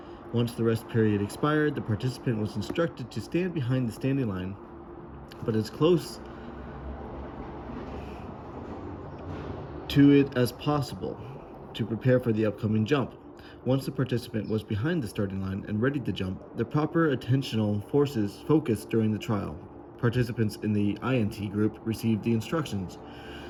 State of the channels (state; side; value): identical; both; correlation 1.00